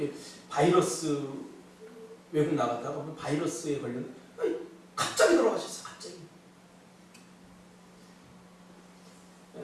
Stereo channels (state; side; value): identical; both; correlation 1.00